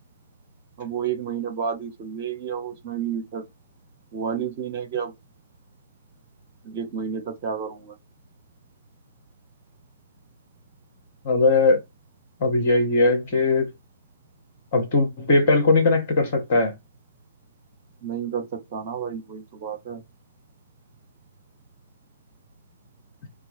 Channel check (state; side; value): inverted; both; correlation -0.54